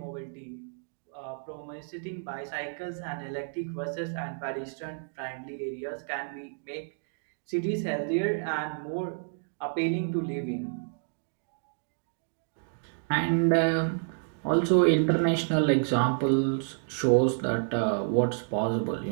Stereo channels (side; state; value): left; silent; digital silence